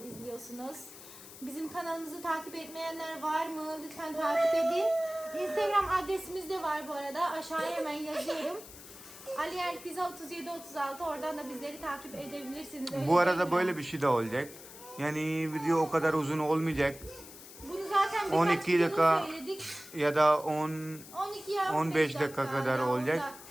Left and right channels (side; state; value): left; noise; hiss, 16 dB below the sound